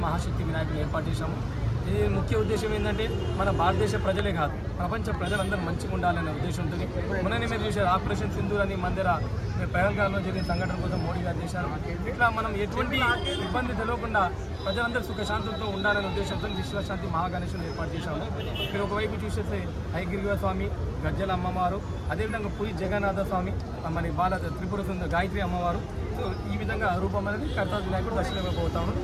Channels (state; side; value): identical; both; correlation 1.00